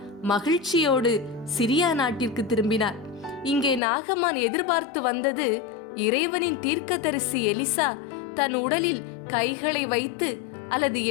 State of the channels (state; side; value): drops out; right; at 3.8 s